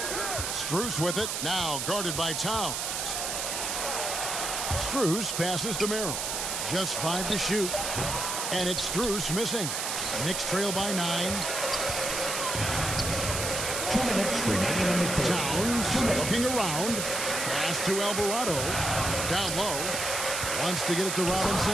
Strus with it. Now guarded by Towns. Strus passes to Merrill. Just 5 to shoot. And it's Strus missing. The Knicks trail by 9. 2 minutes remaining in the third. Towns looking around. Pass to Alvarado. Down low. Wants to get it to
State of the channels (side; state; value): right; noise; hiss, 2 dB below the sound